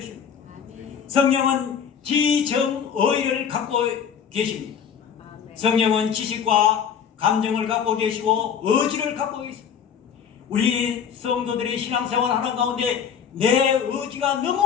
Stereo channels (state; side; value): quieter; right; 7.7 dB